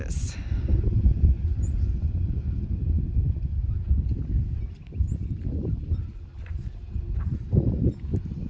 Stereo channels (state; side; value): identical; both; correlation 1.00